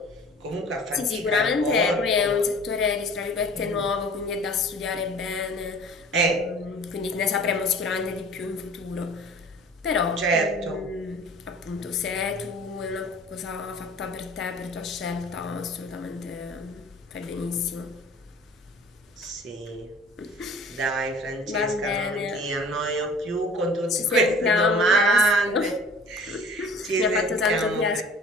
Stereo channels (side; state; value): both; normal; correlation 0.46